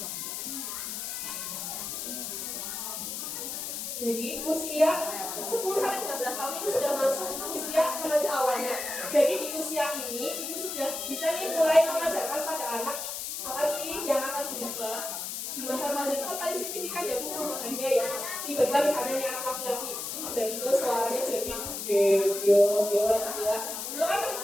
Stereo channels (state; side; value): noise; left; hiss, 5 dB below the sound